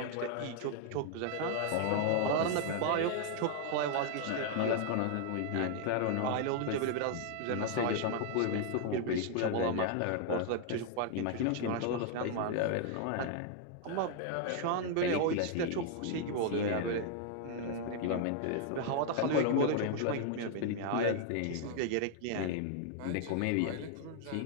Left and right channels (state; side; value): different; both; correlation 0.00